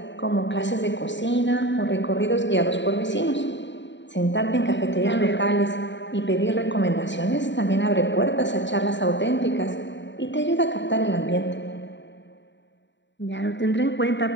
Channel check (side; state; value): right; late; 0.53 ms